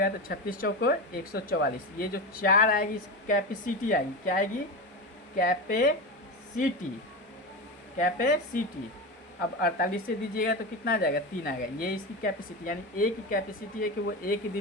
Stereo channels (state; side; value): normal; both; correlation 0.20